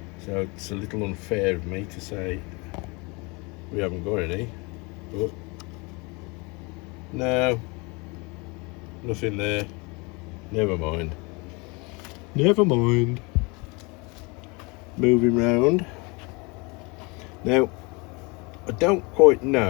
so it's a little unfair of me to say we haven't got any. But no, nothing there. Never mind. Never mind. Moving round. Now, I don't quite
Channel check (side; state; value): right; quieter; 28.4 dB